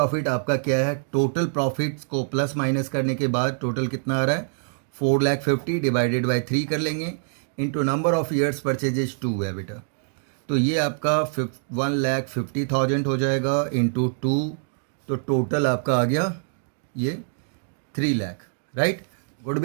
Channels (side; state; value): left; silent; digital silence